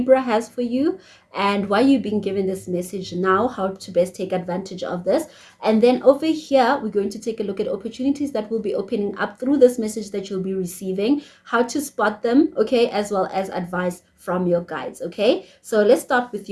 has for you and why you've been given this message now, how to best take advantage of this. And then over here, we're going to take a look at opportunities that will be opening up through this message that you'll be receiving, how to spot them, okay, as well as advice from your guides, okay? So let's start with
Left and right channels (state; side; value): identical; both; correlation 1.00